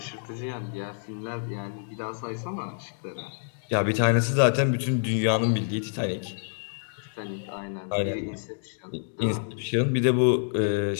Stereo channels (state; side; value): silent; right; digital silence